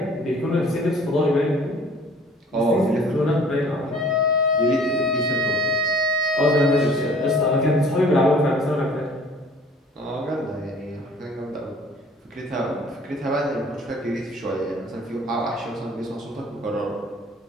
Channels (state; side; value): normal; both; correlation 0.52